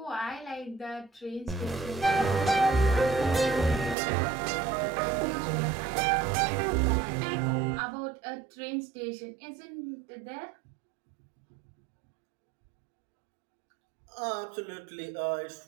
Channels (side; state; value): left; drops out; at 4.0 s